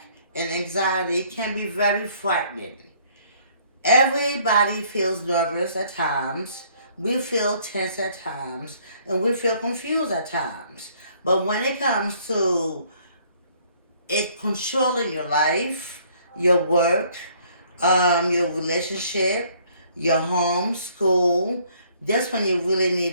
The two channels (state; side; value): inverted; both; correlation -0.62